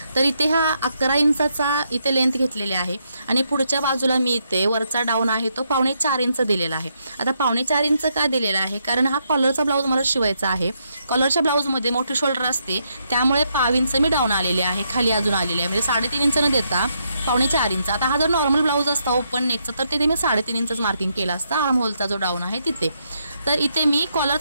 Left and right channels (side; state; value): both; inverted; correlation -0.78